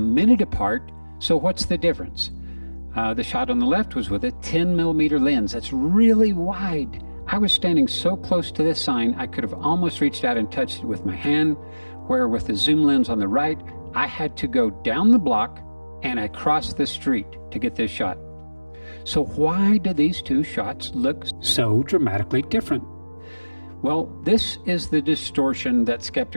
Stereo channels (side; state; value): both; inverted; correlation -1.00